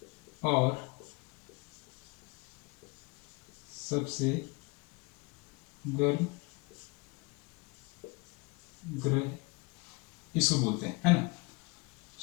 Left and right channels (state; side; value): quieter; right; 27.3 dB